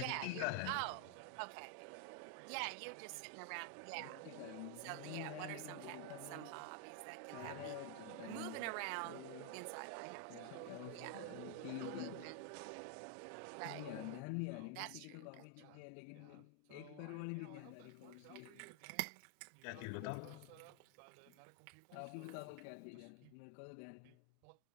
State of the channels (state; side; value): different; both; correlation 0.00